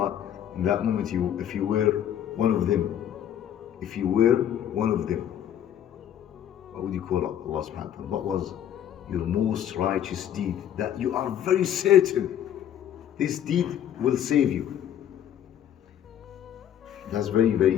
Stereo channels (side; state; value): right; quieter; 10.2 dB